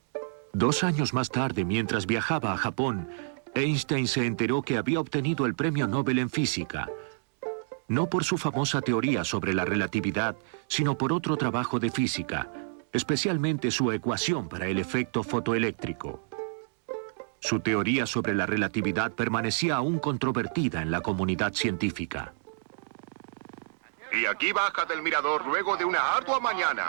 Dos años más tarde, mientras viajaba a Japón, Einstein se enteró que había obtenido el Premio Nobel en Física, no por su famosa teoría sobre la relatividad, sino por otro trabajo de física, especialmente su ecuación para el efecto fotoeléctrico. Su teoría sobre la relatividad permanecía aún controvertida en la comunidad científica. Y aquí baja del mirador luego de una ardua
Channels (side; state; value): left; silent; digital silence